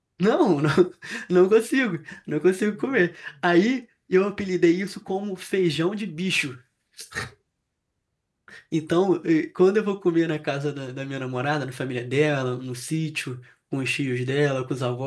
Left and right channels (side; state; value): both; identical; correlation 1.00